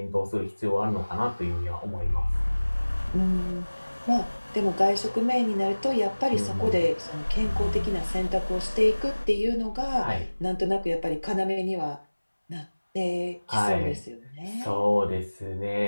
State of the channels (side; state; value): both; inverted; correlation -1.00